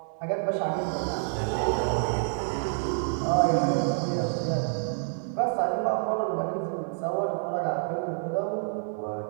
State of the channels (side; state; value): left; silent; digital silence